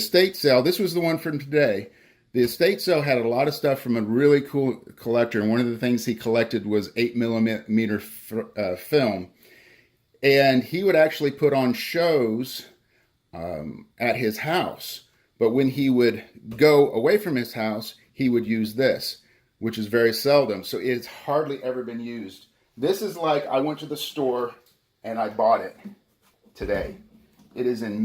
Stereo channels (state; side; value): identical; both; correlation 1.00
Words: sale. This was the one from today. The estate sale had a lot of stuff from a really cool collector, and one of the things he collected was 8mm film. And he would actually put on shows at his house. But when he would go away from his house, he would use this, which is very seldom. So it's hardly ever been used. This is like I went to the store and I bought it today. It is